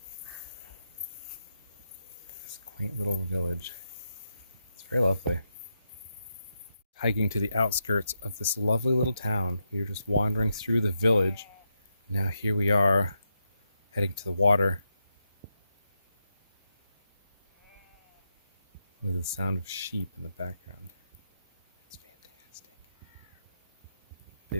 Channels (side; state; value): both; inverted; correlation -0.84